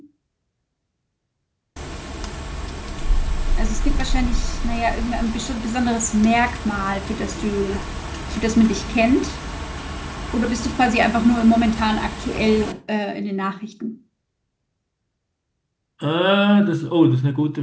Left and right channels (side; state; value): both; identical; correlation 1.00